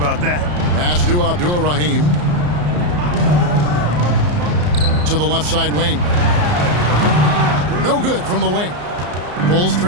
that. Pass to Abdur-Rahim. To the left side wing. No good from the wing. Bulls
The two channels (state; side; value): late; left; 34 ms